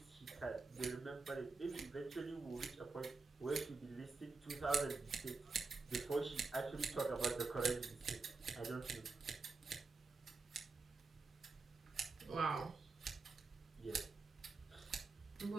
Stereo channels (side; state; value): left; quieter; 4.1 dB